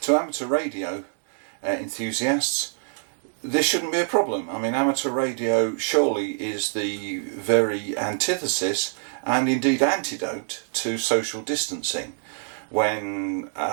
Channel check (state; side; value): silent; left; digital silence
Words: amateur radio enthusiasts, this shouldn't be a problem. I mean, amateur radio surely is the very antithesis and indeed antidote to social distancing, when